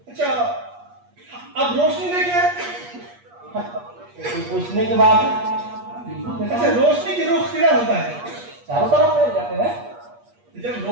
अच्छा, अब रोशनी देखे पूछने के बाद अच्छा, रोशनी की रुख किधर होता है? चारों तरफ फैल जाते हैं। जब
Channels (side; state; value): left; late; 8.4 ms